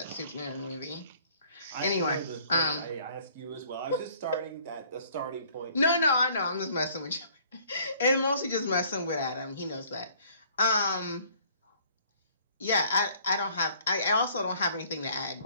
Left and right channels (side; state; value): both; inverted; correlation -0.58